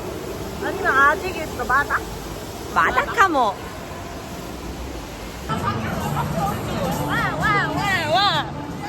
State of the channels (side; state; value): both; identical; correlation 1.00